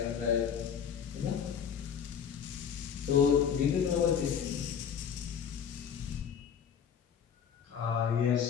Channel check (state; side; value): quieter; right; 7.7 dB